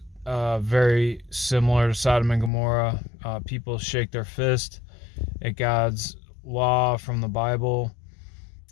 very similar to Sodom and Gomorrah. People shake their fist at God's law from the Bible.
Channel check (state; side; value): drops out; right; at 2.5 s